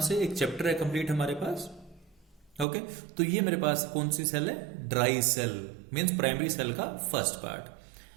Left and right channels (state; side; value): drops out; left; at 2.7 s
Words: एक चैप्टर है कंप्लीट हमारे पास। ओके, तो ये मेरे पास कौन सी सेल है, dry cell, means primary cell का फर्स्ट